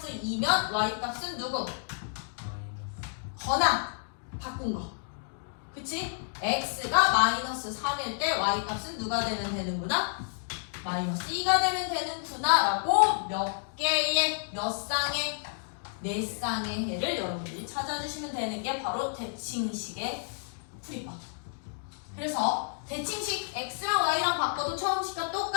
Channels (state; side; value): silent; right; digital silence